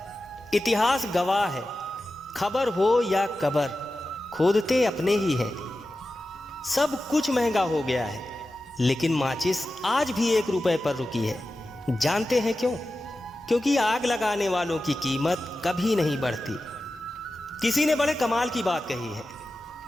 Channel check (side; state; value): both; normal; correlation 0.93